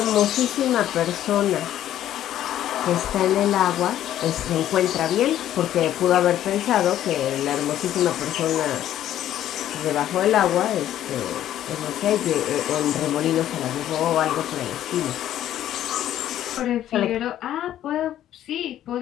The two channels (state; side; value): quieter; right; 11.9 dB